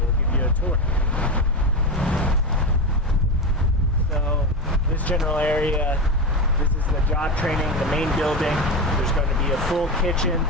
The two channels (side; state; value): both; normal; correlation 0.18